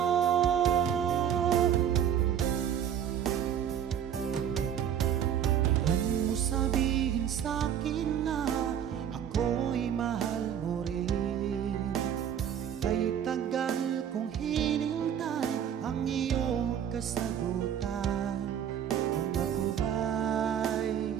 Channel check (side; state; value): left; quieter; 9.2 dB